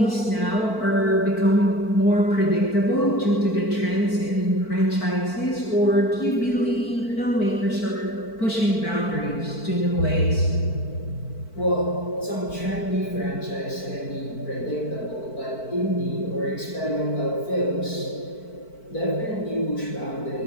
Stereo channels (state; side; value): late; right; 4.5 ms